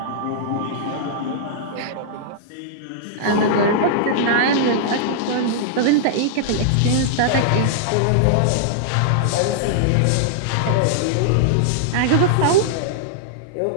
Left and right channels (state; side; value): different; both; correlation -0.01